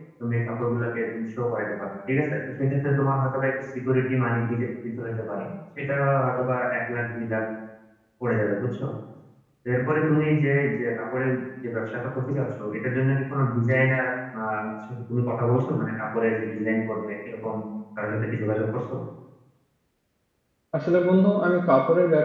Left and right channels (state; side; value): identical; both; correlation 1.00